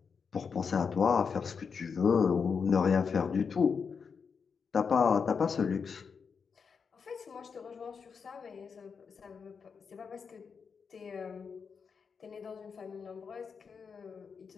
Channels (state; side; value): quieter; right; 5.9 dB